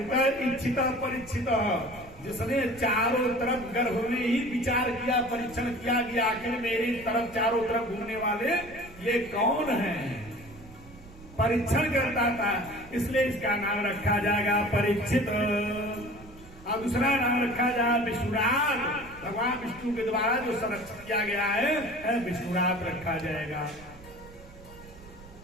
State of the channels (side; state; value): right; noise; rumble, 20 dB below the sound